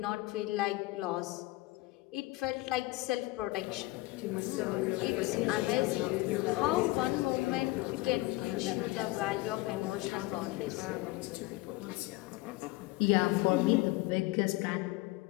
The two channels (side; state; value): right; quieter; 20.4 dB